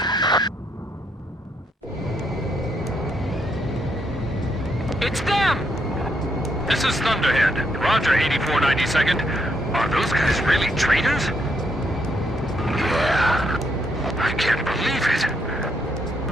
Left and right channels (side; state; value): both; normal; correlation 0.76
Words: It's them! This is Thunderhead. Roger, 8492nd. Are those guys really traitors? Yeah. I can't believe it.